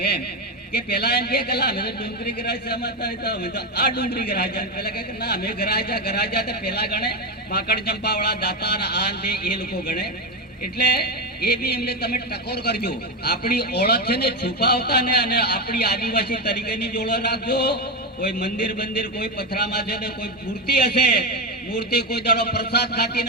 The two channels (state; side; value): normal; both; correlation 0.12